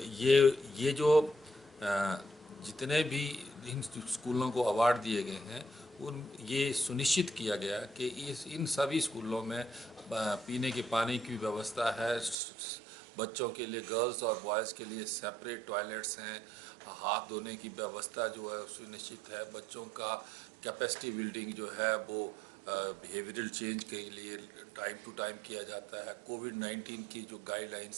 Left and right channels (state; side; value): drops out; left; at 12.4 s